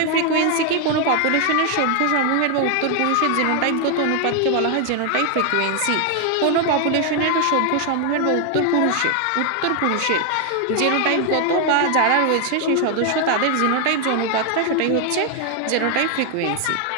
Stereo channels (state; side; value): different; both; correlation 0.00